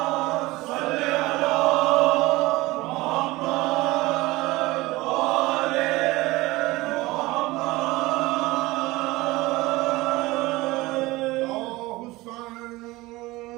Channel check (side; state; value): left; quieter; 20.3 dB